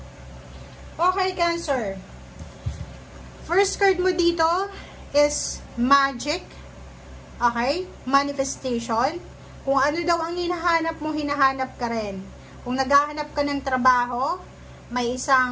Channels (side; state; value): both; identical; correlation 1.00